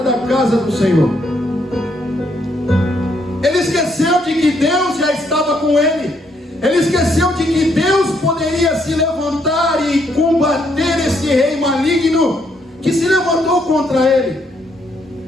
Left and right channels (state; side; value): normal; both; correlation 0.73